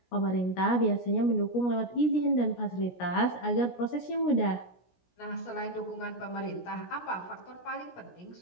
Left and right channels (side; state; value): right; late; 17 ms